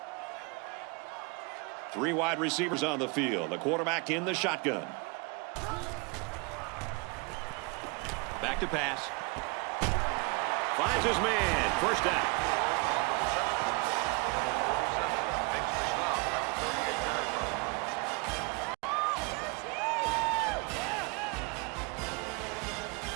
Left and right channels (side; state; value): left; quieter; 30.6 dB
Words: 3 wide receivers on the field. The quarterback in the shotgun. Back to pass. Finds his man. First down.